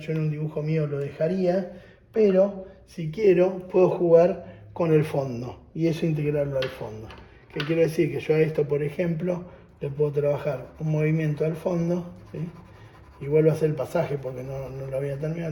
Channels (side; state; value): both; identical; correlation 1.00